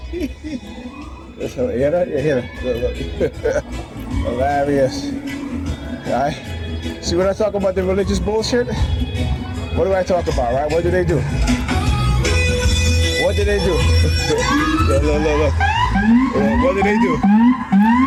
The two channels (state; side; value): identical; both; correlation 1.00